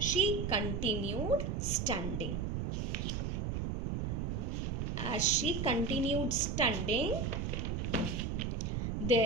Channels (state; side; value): noise; right; rumble, 1 dB below the sound